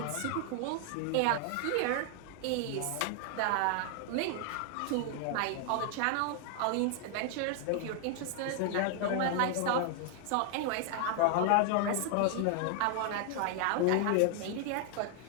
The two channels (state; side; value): different; both; correlation 0.00